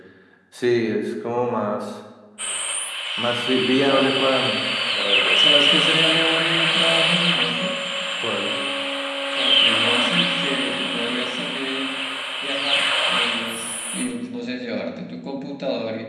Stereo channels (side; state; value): both; identical; correlation 1.00